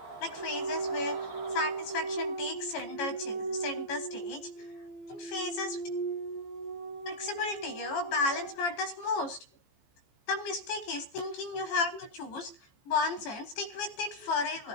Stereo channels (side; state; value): right; late; 14 ms